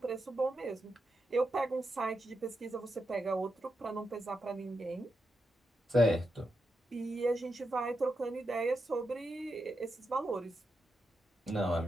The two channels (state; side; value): normal; both; correlation 0.86